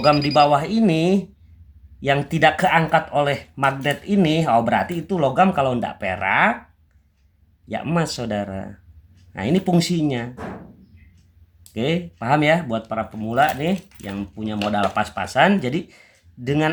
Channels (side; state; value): both; identical; correlation 1.00